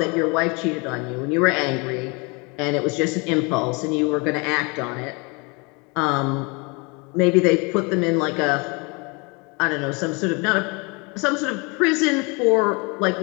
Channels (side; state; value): right; quieter; 29.7 dB